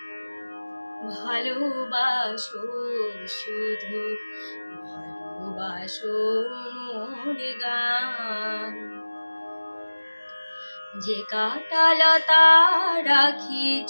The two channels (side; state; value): both; inverted; correlation -1.00